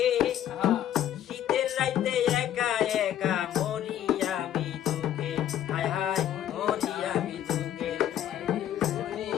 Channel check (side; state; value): right; quieter; 11.2 dB